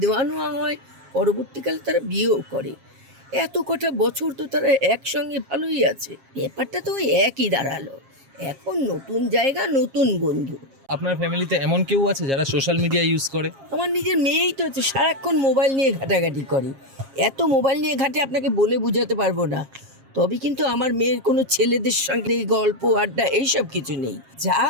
দেওয়া নেওয়া হয়, পরবর্তীকালে তারা বিয়েও করে। এত কটা বছর তো তারা একসঙ্গে ভালোই আছে, ব্যাপারটা তো ওই একই দাঁড়ালো। এখন নতুন জায়গা, নতুন বন্ধু। আপনার ফ্যামিলিতে এমন কেউ আছে যারা সোশ্যাল মিডিয়া ইউজ করে? আমার নিজের মেয়েই তো হচ্ছে, সারাক্ষণ মোবাইল নিয়ে ঘাটাঘাটি করে। এত মোবাইল নিয়ে ঘাটে আপনাকে বলে বোঝাতে পারবো না। তবে কিন্তু আমার মেয়ের কোনো ছেলেদের সঙ্গে এই গল্প আড্ডা এইসব কিছু নেই। যা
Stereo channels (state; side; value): late; left; 7.4 ms